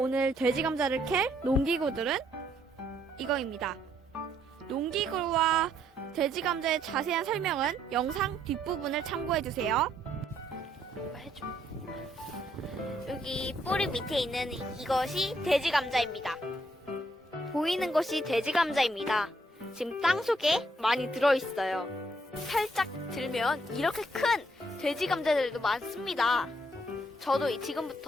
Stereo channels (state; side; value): normal; both; correlation 0.71